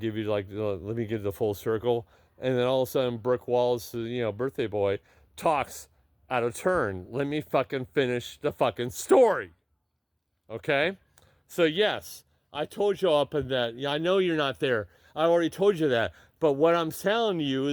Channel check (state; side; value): identical; both; correlation 1.00